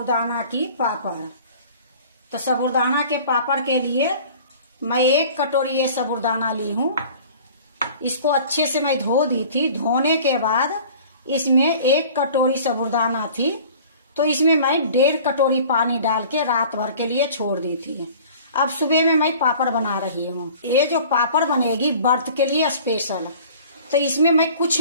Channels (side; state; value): both; inverted; correlation -0.46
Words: की पापड़। तो साबूदाना के पापड़ के लिए मैं 1 कटोरी ये साबूदाना ली हूँ। इसको अच्छे से मैं धो दी थी। धोने के बाद इसमें 1 कटोरी साबूदाना थी, तो इसमें मैं 1.5 कटोरी पानी डाल के रात भर के लिए छोड़ दी थी। अब सुबह में मैं पापड़ बना रही हूँ। ये जो पापड़ बनेगी व्रत के लिए स्पेशल, तो इसमें मैं कुछ